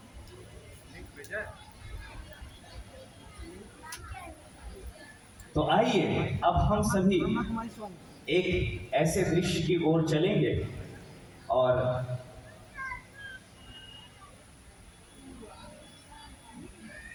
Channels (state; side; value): identical; both; correlation 1.00